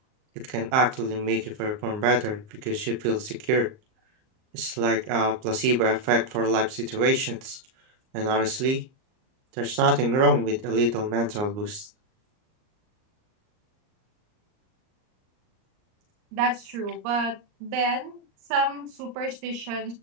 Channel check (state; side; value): late; left; 38 ms